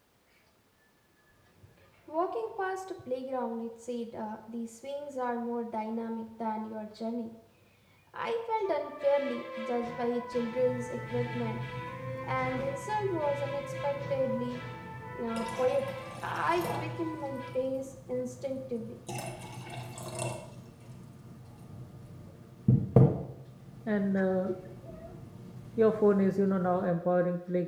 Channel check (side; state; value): both; identical; correlation 1.00